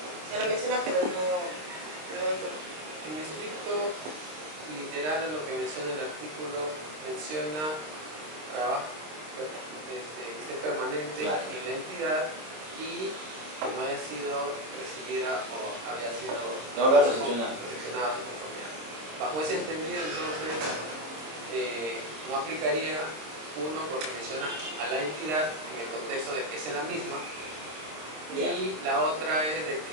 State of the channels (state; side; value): late; left; 26 ms